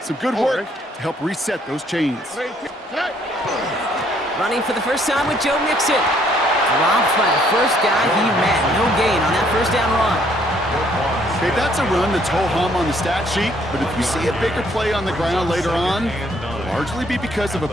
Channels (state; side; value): normal; both; correlation 0.65